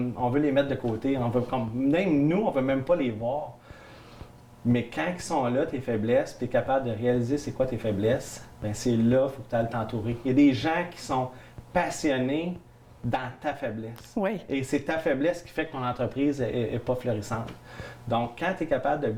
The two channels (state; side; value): identical; both; correlation 1.00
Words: veut les mettre de côté. Même nous, on ne veut même pas les voir. Mais quand ils sont là, tes faiblesses, tu es capable de réaliser c'est quoi tes faiblesses, bien c'est là qu'il faut que tu ailles t'entourer. Il y a des gens qui sont passionnés dans ta faiblesse. Oui. Et c'est ta faiblesse qui fait que ton entreprise n'est pas florissante. Donc, quand tu es capable de